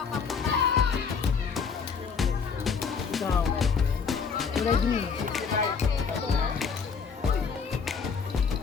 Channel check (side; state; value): right; quieter; 5.8 dB